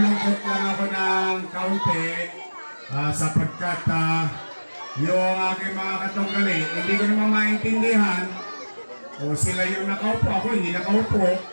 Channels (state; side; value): inverted; both; correlation -1.00